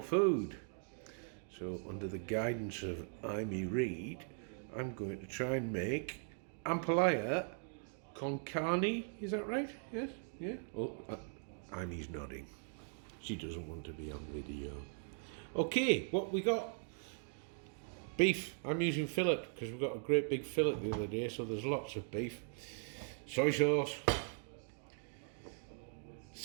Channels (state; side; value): silent; left; 51 dB below the other